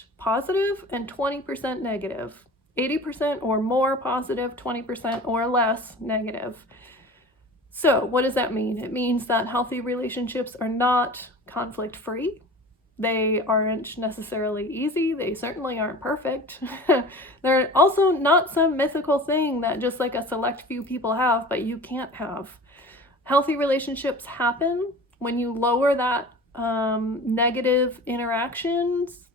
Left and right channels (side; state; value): both; normal; correlation 0.38